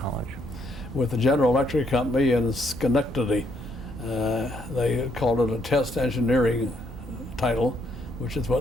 With the General Electric Company in Schenectady. They called it a test engineering title, which is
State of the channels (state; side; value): normal; both; correlation 0.72